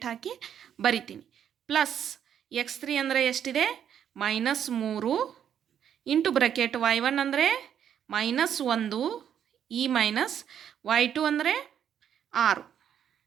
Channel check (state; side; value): quieter; left; 9.1 dB